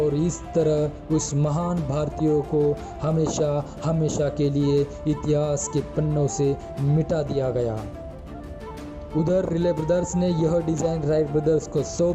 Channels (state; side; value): identical; both; correlation 1.00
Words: इस तरह उस महान भारतीयों को हमेशा के लिए इतिहास के पन्नों से मिटा दिया गया। उधर रिले ब्रदर्स ने यह डिज़ाइन राइट ब्रदर्स को सौंप